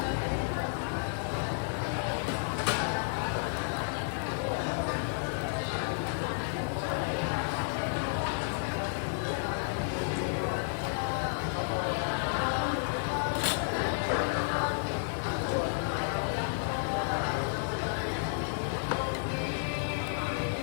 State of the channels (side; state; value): right; silent; 57 dB below the other